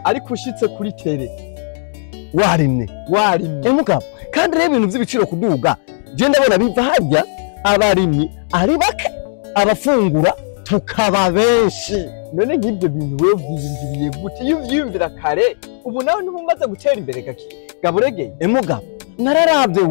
ariko ushitse kuri tele warimwe mugabo kandi rero ibintu by'ibiciro kuduga je ndabona biva harya abarimyi ari bake abafungura tukaba benshi. None nk'ibyo bintu wewe byiyumviriye gute iyo uvyumvira kare ubu nawe ntumaze gutera imbere gaburegeye mugabo nararabye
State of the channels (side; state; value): right; silent; digital silence